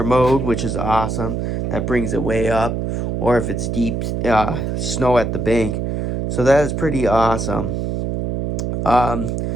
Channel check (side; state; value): right; noise; hum, 1 dB below the sound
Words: mode, which is awesome. That brings it way up. Or if it's deep snow at the bank. So that is pretty awesome.